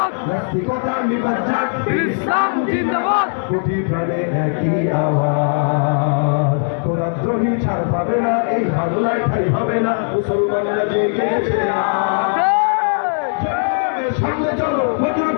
নাস্তিকতা নিপাত যাক, ইসলাম জিন্দাবাদ, কোটি প্রাণে একই আওয়াজ। খোদাদ্রোহী ছাড় পাবে না, এই বাংলায় ঠাই হবে না, মুসলমানরা জেগেছে সামনে চলো, বজ্র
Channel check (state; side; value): silent; right; 67 dB below the other